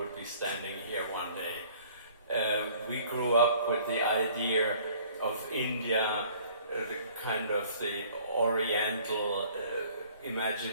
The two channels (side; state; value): both; inverted; correlation -0.55